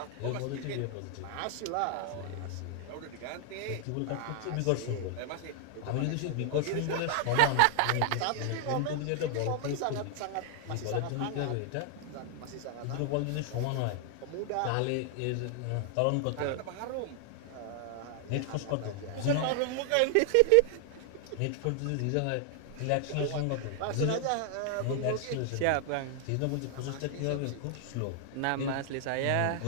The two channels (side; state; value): both; different; correlation 0.00